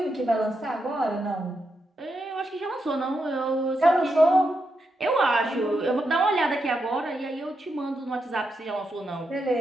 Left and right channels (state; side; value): normal; both; correlation 0.84